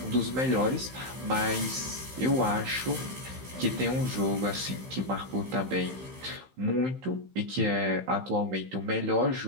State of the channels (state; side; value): late; left; 15 ms